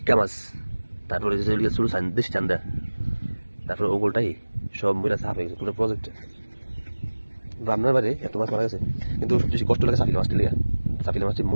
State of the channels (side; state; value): both; inverted; correlation -1.00